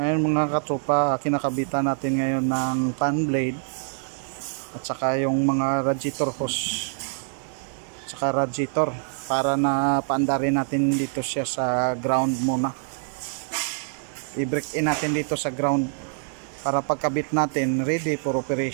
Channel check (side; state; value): left; silent; 56 dB below the other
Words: mga katropa, kinakabitan natin ngayon ng fan blade at saka yung mga radiator hose at saka radiator para na paandarin natin dito siya sa ground muna. I-break in natin dito sa ground para pagkabit natin ready for